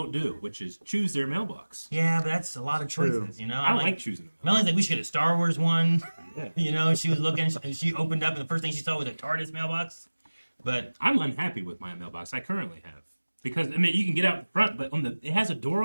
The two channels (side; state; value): both; inverted; correlation -1.00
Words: do, which is choose their mailbox. Yeah, but that's a lot of True. choices, I I'm like choosing them. Melanie's like, we should get a Star Wars one. Yeah. She was looking, and she opened up, and the first thing she saw was a TARDIS mailbox. But I'm unhappy with my mailbox I currently have. Because, I mean, you can get out the front, but it has a door